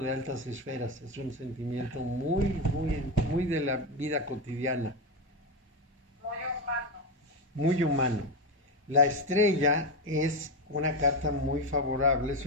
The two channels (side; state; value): both; normal; correlation 0.13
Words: de altas esferas, es un sentimiento muy de la vida cotidiana. Muy humano. Muy humano. La estrella es una carta muy favorable, es